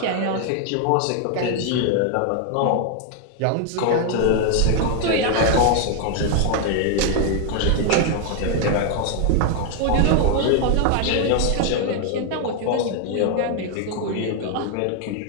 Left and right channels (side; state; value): both; different; correlation 0.00